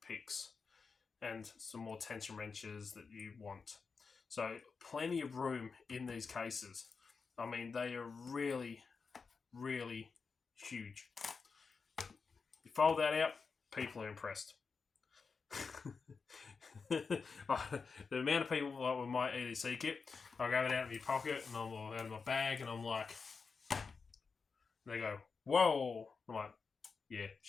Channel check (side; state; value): right; quieter; 5.0 dB